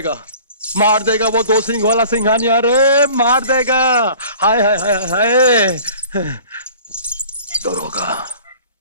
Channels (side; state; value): both; inverted; correlation -0.46